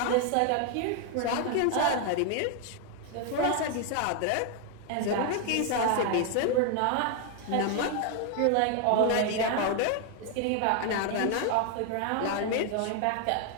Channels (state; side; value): different; both; correlation 0.00